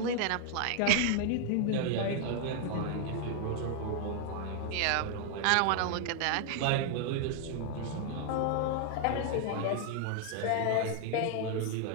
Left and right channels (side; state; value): both; different; correlation 0.00